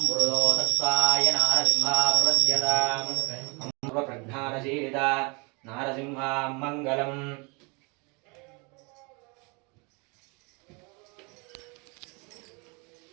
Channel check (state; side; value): quieter; left; 30.7 dB